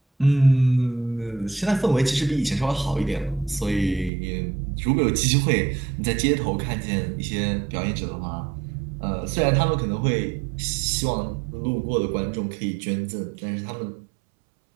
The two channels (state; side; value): drops out; left; at 4.1 s